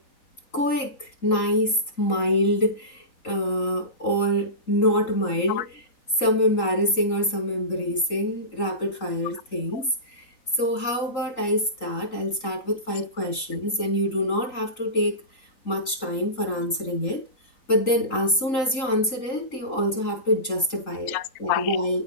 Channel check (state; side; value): late; right; 3.8 ms